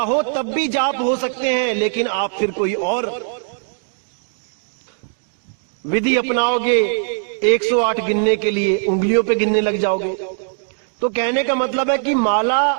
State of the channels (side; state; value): left; silent; digital silence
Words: हो तब भी जाप हो सकते हैं, लेकिन आप फिर कोई और विधि अपनाओगे 108 गिनने के लिए, उंगलियों पे गिनने लग जाओगे। तो कहने का मतलब है कि माला